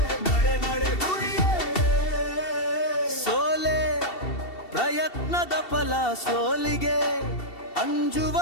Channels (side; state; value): right; late; 2.7 ms